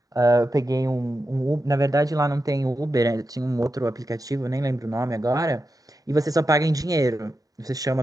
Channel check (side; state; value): both; normal; correlation 0.89